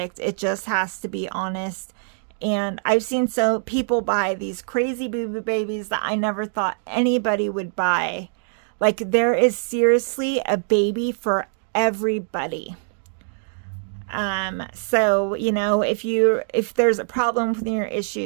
It just has to be honest. And I've seen people buy these crazy boo-boo babies that I never thought anybody would buy. Like, there is seriously a baby for everybody. So, you know, if there's a problem with your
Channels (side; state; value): left; silent; digital silence